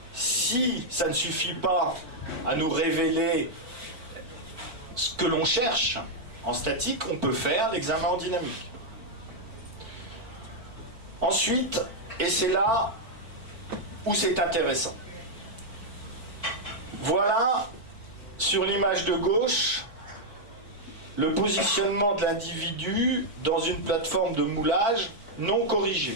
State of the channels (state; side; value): late; left; 4.5 ms